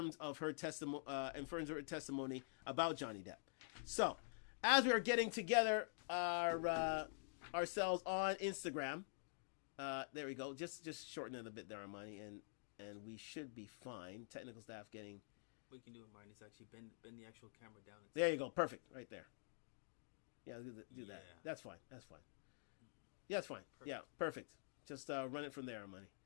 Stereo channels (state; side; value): silent; right; digital silence